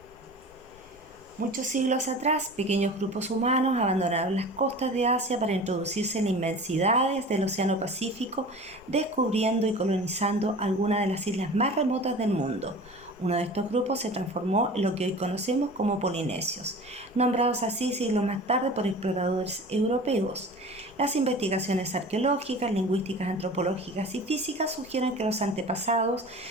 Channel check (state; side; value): normal; both; correlation 0.38